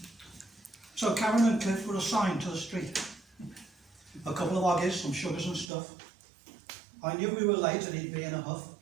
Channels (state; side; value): drops out; left; at 5.7 s